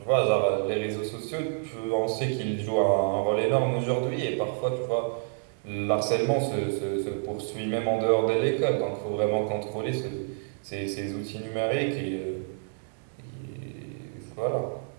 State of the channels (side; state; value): left; silent; digital silence